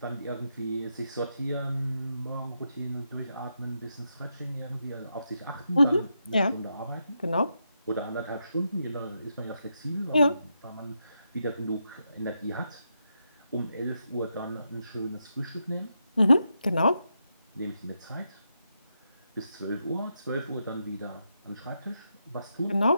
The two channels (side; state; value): both; inverted; correlation -0.84